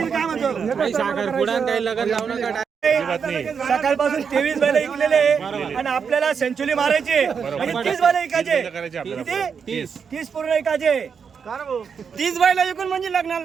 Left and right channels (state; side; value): quieter; left; 6.4 dB